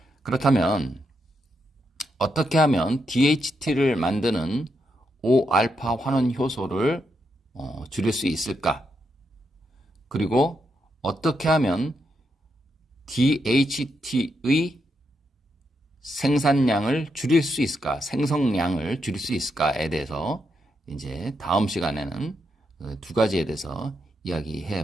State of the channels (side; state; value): both; normal; correlation 0.82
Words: 그렇다면 어떻게 하면 DHT를 만드는 5알파 환원 효소를 줄일 수 있을까? 그리고 어떻게 하면 DHT의 생산량을 줄일 수 있을까? 생성량을 줄일 수 있을까에 대해서 이제 다음 시간에는 두 가지에 대해서